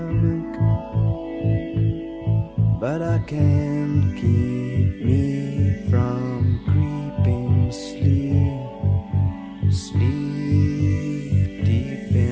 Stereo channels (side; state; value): both; identical; correlation 1.00